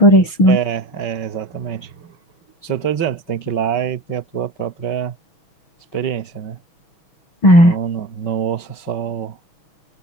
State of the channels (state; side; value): late; right; 6.3 ms